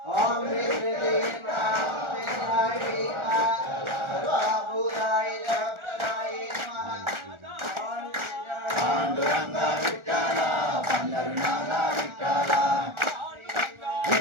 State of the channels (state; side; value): late; left; 1.4 ms